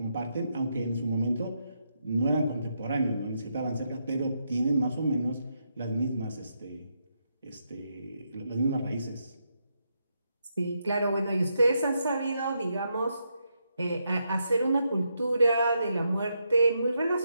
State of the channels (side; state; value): both; inverted; correlation -0.81